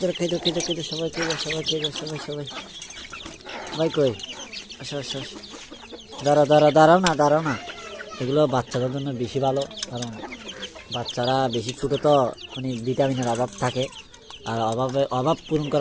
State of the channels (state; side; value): identical; both; correlation 1.00